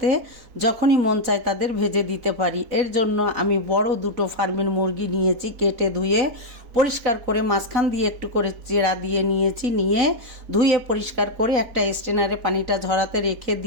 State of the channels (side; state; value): left; late; 3.9 ms